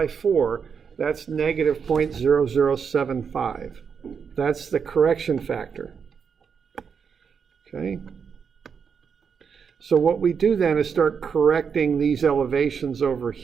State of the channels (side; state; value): left; quieter; 6.5 dB